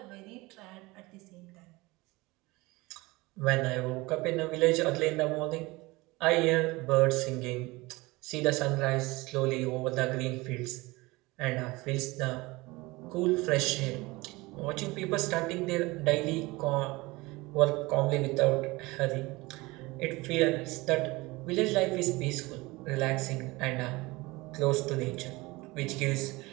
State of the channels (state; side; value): quieter; left; 22.2 dB